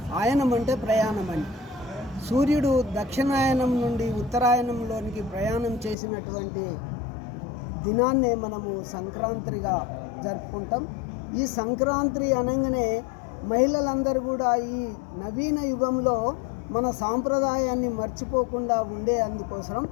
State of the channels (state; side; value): drops out; right; at 6.0 s